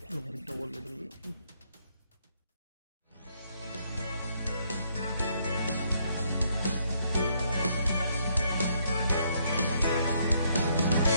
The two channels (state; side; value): inverted; both; correlation -0.71